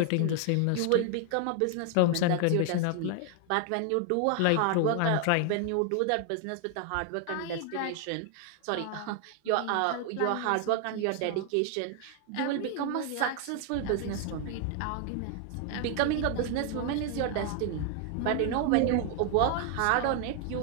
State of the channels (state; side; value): different; both; correlation 0.00